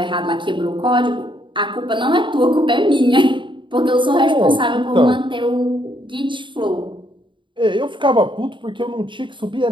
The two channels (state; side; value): late; left; 0.23 ms